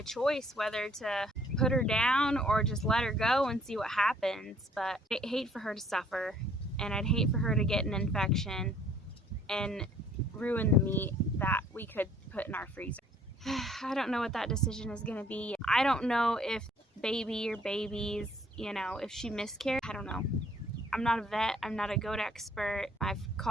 choice whether to put her down or just let her go and see what happens. But I'd hate for her to suffer, and I'd hate for her to get an infection and ruin the meat that we could put in our freezer. I don't know what that decision is going to be. I don't know if baby or babies, if she miscarried. I don't know. I'm not a vet. I'm not a goat expert. I've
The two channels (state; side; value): normal; both; correlation 0.59